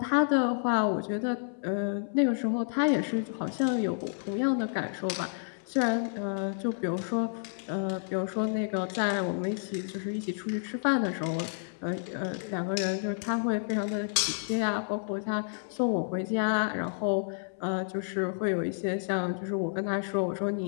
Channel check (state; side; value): silent; right; 58 dB below the other